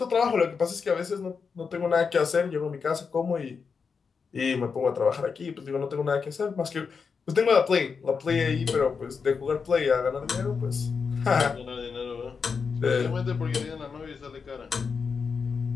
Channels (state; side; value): quieter; right; 5.5 dB